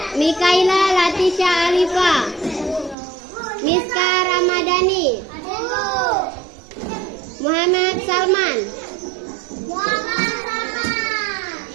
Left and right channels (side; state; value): left; drops out; at 3.0 s